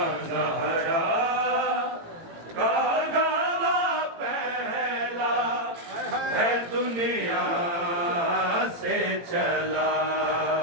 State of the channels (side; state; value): left; late; 18 ms